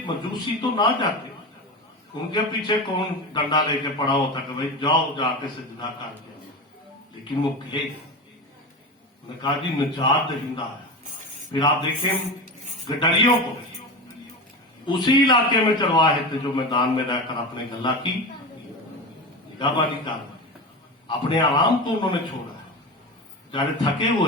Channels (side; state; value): both; normal; correlation 0.25